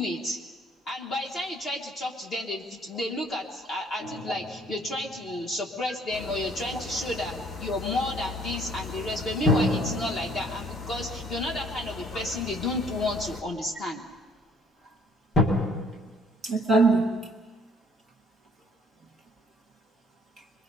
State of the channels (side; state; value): both; normal; correlation 0.59